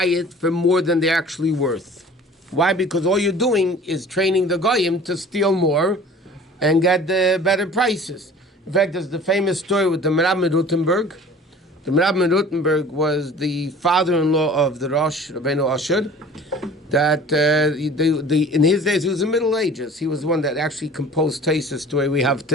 it for more than they're actually worth. Why? Because all you're doing is training the goyim to steal more and get the better prices. In fact, there's the famous story with the Merab Rutenberg. The Merab Rutenberg was the father-in-law of the Rosh, Rabbeinu Asher, that in his days, he was in the Middle Ages. He was the one that actually composed Taisus the way we have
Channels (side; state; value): both; normal; correlation 0.45